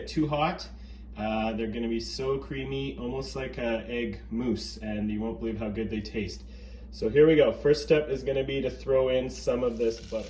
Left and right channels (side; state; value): both; identical; correlation 1.00